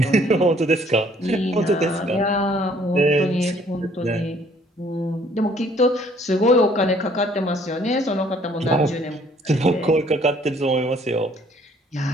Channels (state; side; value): normal; both; correlation 0.60